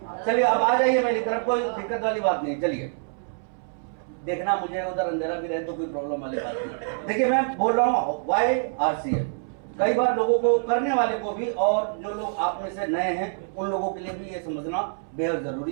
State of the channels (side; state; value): left; silent; 61 dB below the other